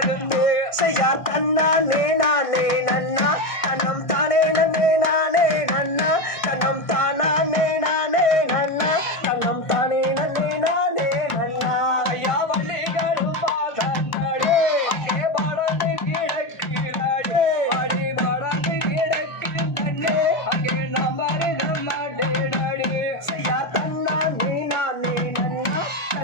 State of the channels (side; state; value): right; late; 1.6 ms